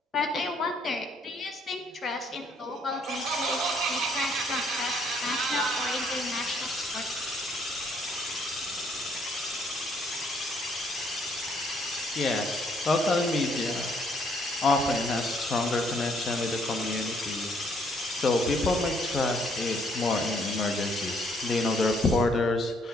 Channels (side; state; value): both; normal; correlation 0.67